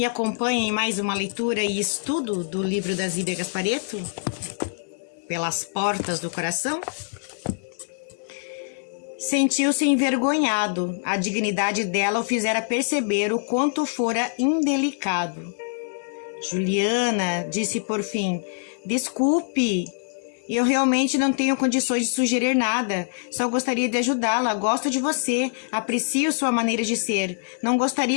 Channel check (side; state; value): right; silent; 62 dB below the other